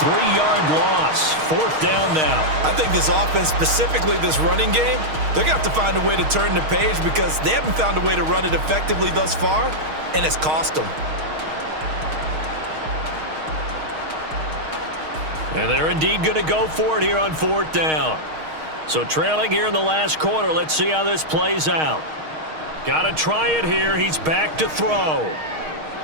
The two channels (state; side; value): late; left; 6.4 ms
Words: loss. 4th down now. I think this offense, specifically this running game, they're going to have to find a way to turn the page because they haven't found a way to run it effectively thus far, and it's cost them. And they're indeed going to go for it here on 4th down. So trailing here in the last quarter, let's see how this plays out. Got to try it here. He's back to throw.